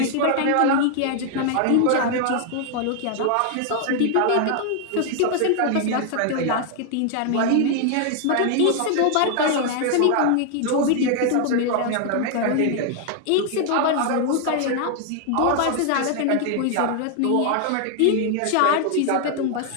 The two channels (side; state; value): both; different; correlation 0.00